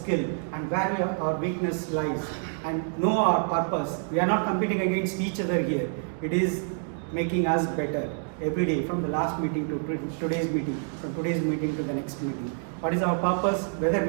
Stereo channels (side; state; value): left; silent; 60 dB below the other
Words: and where our weakness lies, and know our purpose. We are not competing against each other here. It is making us better every day, from the last meeting to today's meeting, from today's meeting to the next meeting. What is our purpose? Whether